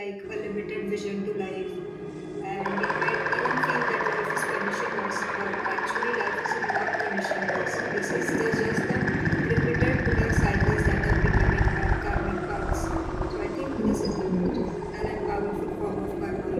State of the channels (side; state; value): both; identical; correlation 1.00